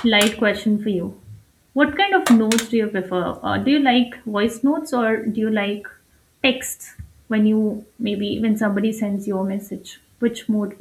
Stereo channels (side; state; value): both; identical; correlation 1.00